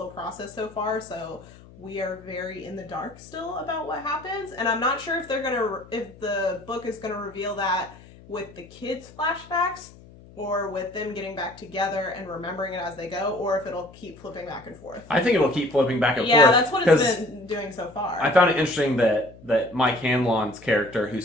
process so far, so we are very in the dark still about what happens, and I'm not sure if the book is gonna reveal that with the kids' flashbacks, or with them getting back together and remembering it as they go, or if it'll keep flipping back and forth. I think it'll keep flipping back and forth. Yeah, that's what it's been doing so far. I found it interesting that Mike Hanlon's character, who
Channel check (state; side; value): noise; left; hum, 21 dB below the sound